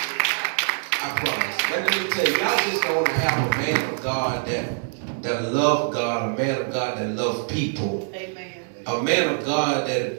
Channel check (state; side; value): silent; left; digital silence